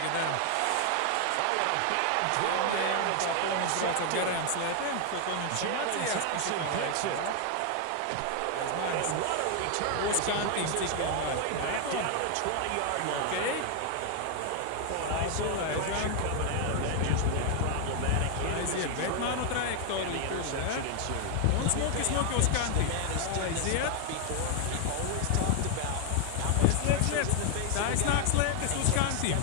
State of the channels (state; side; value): different; both; correlation 0.00